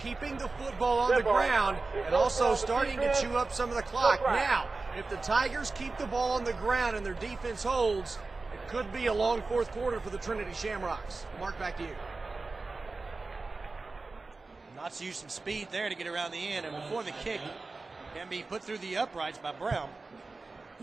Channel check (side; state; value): left; quieter; 3.7 dB